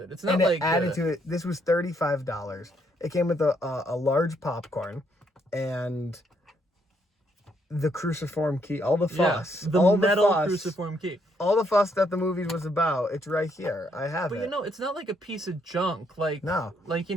It's not and like... it added to it. This was $35. It came with a large popcorn and the cruciform key, all the fuss. The metal cruciform key. All the fuss that the movie was about, it's right here. I have it. But you know, it's not like a piece of junk. Like, no. Like, you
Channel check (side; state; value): both; normal; correlation 0.73